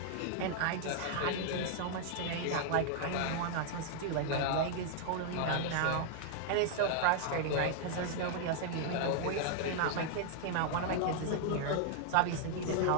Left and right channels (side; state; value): both; different; correlation 0.00